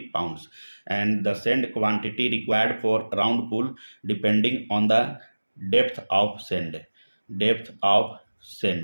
pounds, and the sand quantity required for round pool depending on the depth of sand. Depth of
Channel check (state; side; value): inverted; both; correlation -1.00